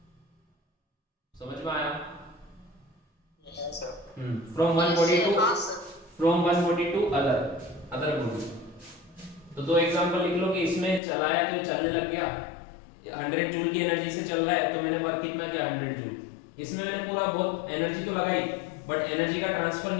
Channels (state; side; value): drops out; right; at 11.0 s